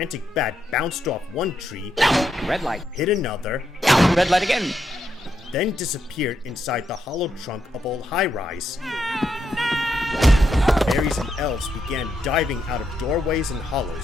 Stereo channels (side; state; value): both; normal; correlation 0.81